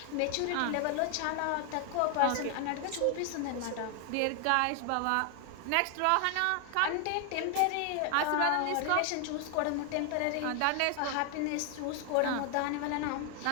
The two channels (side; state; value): both; different; correlation 0.00